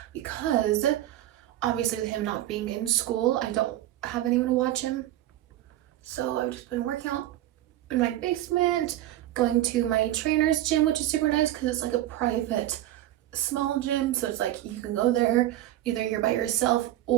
because obviously with him not being in school, I don't have anyone to watch him. So I've just been working out in my basement, going to my trainer's gym, which is super nice because it's like a private small gym. So it's like you can go there, either you're by yourself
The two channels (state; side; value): quieter; left; 14.0 dB